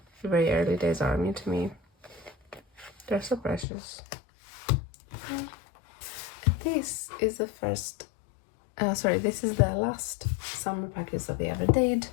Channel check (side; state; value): right; drops out; at 3.7 s